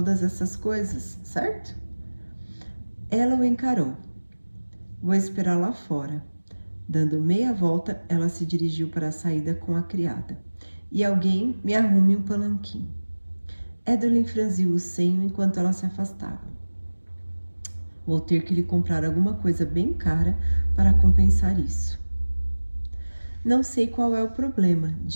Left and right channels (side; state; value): both; inverted; correlation -1.00